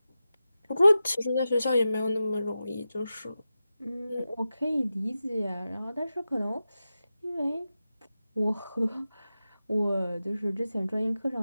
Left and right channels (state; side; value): inverted; both; correlation -0.93